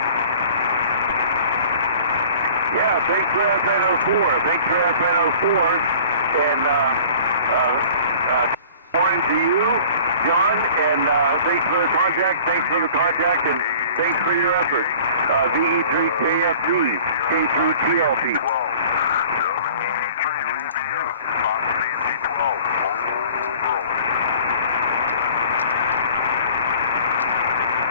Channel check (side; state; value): both; inverted; correlation -0.47